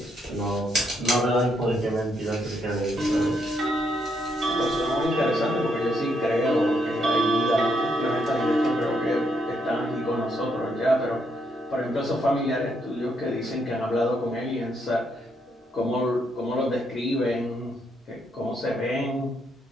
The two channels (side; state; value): both; normal; correlation 0.76